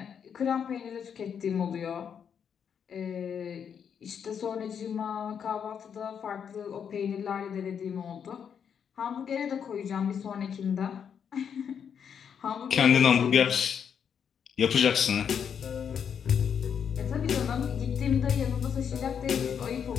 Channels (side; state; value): right; quieter; 7.6 dB